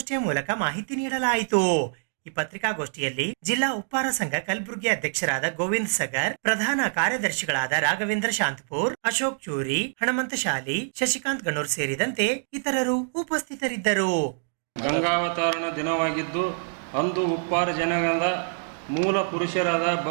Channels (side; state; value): left; silent; digital silence